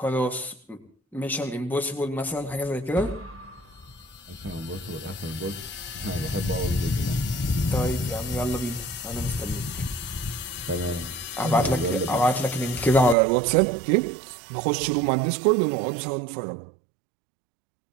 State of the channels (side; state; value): left; drops out; at 13.2 s